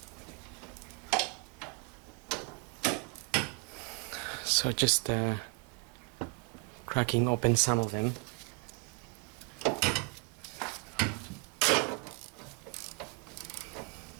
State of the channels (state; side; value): quieter; left; 31.4 dB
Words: So just cracking open some of them.